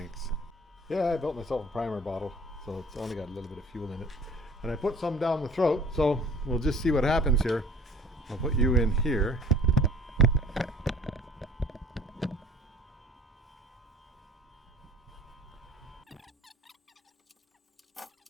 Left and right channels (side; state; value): both; normal; correlation 0.49